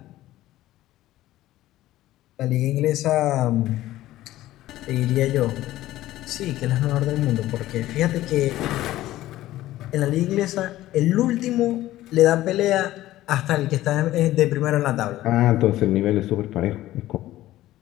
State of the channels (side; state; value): right; quieter; 15.2 dB